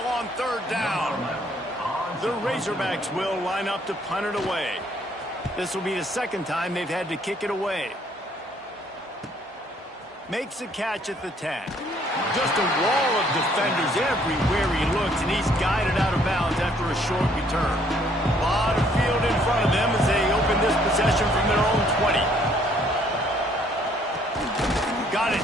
on 3rd down. The Razorbacks will line up to punt it away. This will be the 2nd time they've had to kick it away. Makes a catch at the 10. Just a wall of defenders everywhere he looks, and he's guided out of bounds after a short return. A lot of field in front of them as they open this possession from their own 20. Got it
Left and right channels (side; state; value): both; normal; correlation 0.64